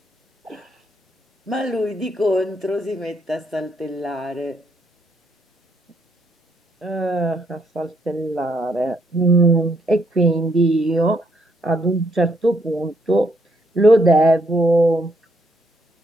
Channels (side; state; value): both; normal; correlation 0.73